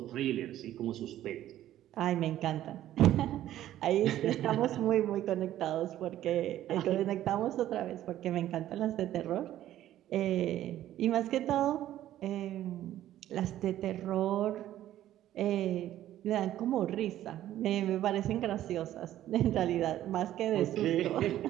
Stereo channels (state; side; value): quieter; left; 12.9 dB